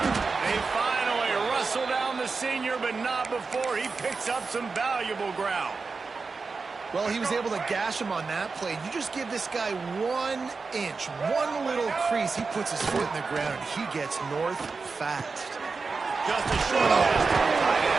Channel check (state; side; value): quieter; left; 4.5 dB